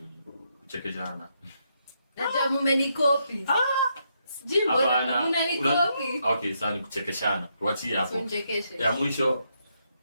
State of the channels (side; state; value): both; inverted; correlation -0.78